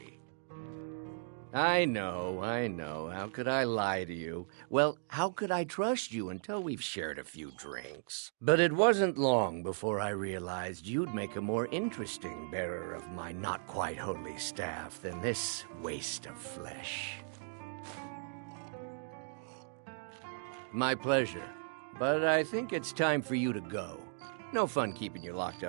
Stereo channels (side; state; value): left; silent; digital silence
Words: I know. How could I lie to you? Well, how could I trust you until we've shared a few drinks? But it wasn't long before I realized you'd make a more interesting bearer of my not-quite-holy staff than this waste of flesh. My pleasure. But I think it's time for you to go. No fun keeping you locked